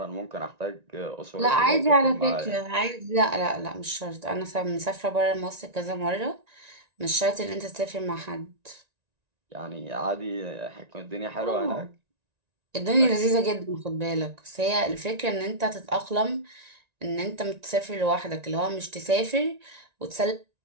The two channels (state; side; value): late; left; 1.9 ms